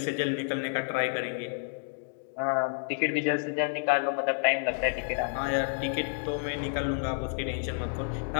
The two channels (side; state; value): right; silent; digital silence